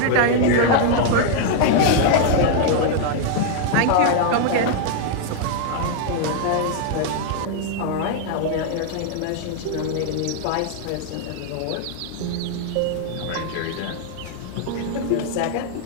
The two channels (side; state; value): both; different; correlation 0.00